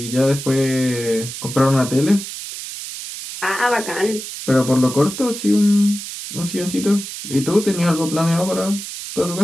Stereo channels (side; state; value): right; noise; hiss, 9 dB below the sound